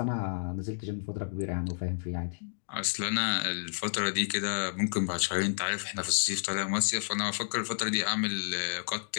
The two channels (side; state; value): right; silent; digital silence